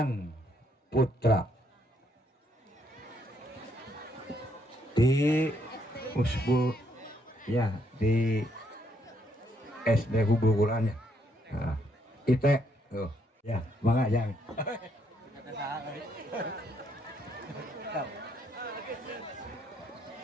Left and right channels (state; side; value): normal; both; correlation 0.73